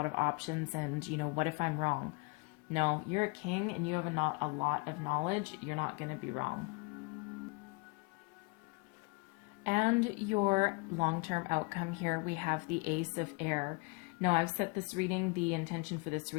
of options, and what if I'm wrong? No, you're a king and you have a lot of knowledge. You're not going to be wrong. And your long-term outcome here, we have the Ace of Air. Now, I've set this reading, the intention for this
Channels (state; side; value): quieter; right; 28.5 dB